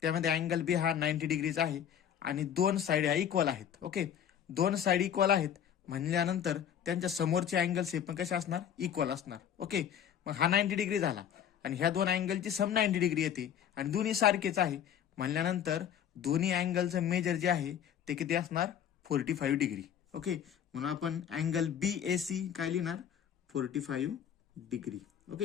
त्यामध्ये अँगल बी हा 90 डिग्रीचा आहे आणि दोन साईड ह्या इक्वल आहेत. ओके, दोन साईड इक्वल आहेत म्हणल्यानंतर त्यांच्या समोरचे अँगल्स हे पण कसे असणार, इक्वल असणार. ओके, मग हा 90 डिग्री झाला आणि ह्या दोन अँगलची सम 90 डिग्री येते आणि दोन्ही सारखेच आहे म्हणल्यानंतर दोन्ही अँगलचं मेजर जे आहे ते किती असणार, 45 डिग्री. ओके, म्हणून आपण अँगल बी ए सी काय लिहिणार, 45 डिग्री.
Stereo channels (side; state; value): right; quieter; 9.2 dB